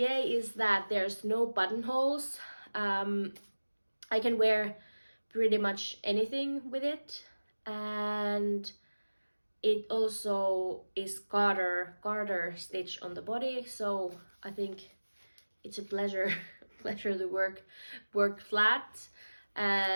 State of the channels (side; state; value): both; inverted; correlation -1.00